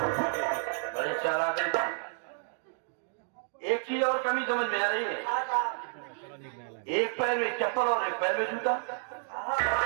बड़े चालाक हैं। एक चीज और कमी समझ में आ रही है। एक पैर में चप्पल और एक पैर में जूता।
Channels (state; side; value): silent; left; 57 dB below the other